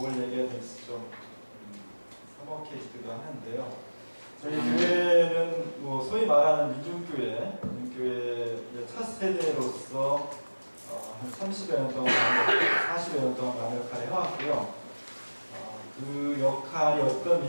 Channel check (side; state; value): both; inverted; correlation -1.00